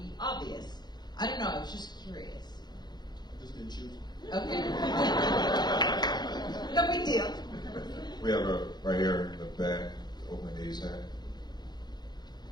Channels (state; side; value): late; right; 0.21 ms